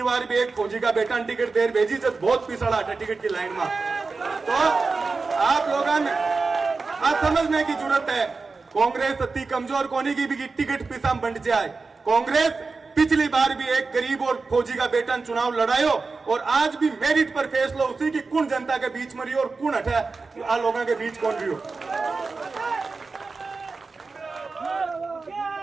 बार भी एक फौजी का बेटा टिकट देर भेजी जब बहुत पिछड़ा हटा टिकट की लाइन में। तो आप लोगों ने समझने की जरूरत है, कांग्रेस अति कमजोर कोनी की भी टिकट पिसा बंट जाए। कांग्रेस पिछली बार भी एक गरीब और फौजी का बेटा चुनाव लड़ायो और आज भी मेरिट पर फैसला उसी की कौन जनता के बीच में रही और कौन हटा आ लोगों के बीच कौन रही हो।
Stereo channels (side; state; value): left; quieter; 4.2 dB